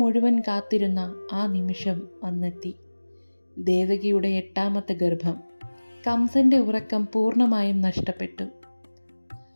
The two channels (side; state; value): both; inverted; correlation -1.00